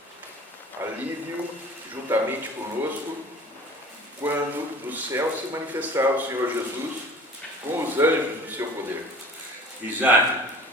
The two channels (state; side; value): normal; both; correlation 0.44